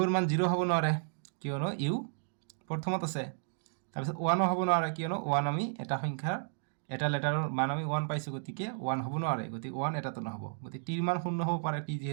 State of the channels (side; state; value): left; silent; digital silence